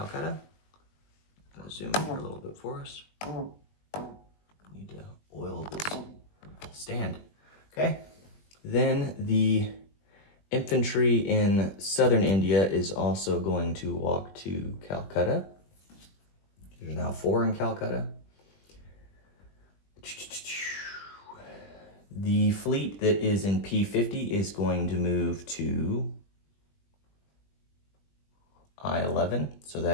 I'm going to zoom in here a little bit for us. Need to oil this stand. Okay. Then the infantry in southern India is also going to walk to Calcutta. There's now 4 in Calcutta. The fleet that is in P50 is going to move to I-11. So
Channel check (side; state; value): right; late; 20 ms